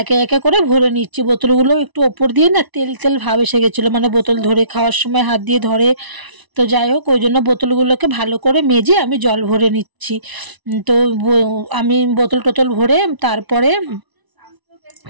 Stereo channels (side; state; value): left; late; 1.0 ms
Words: একে একে করে ভরে নিচ্ছি। বোতলগুলো একটু ওপর দিয়ে না তেল তেল ভাব এসে গেছিলো, মানে বোতল ধরে খাওয়ার সময় হাত দিয়ে ধরে। তো যাই হোক, ওই জন্য বোতলগুলোকে ভালো করে মেজে আমি জল ভরে নিচ্ছি। তো আমি বোতল টোতল ভরে তারপরে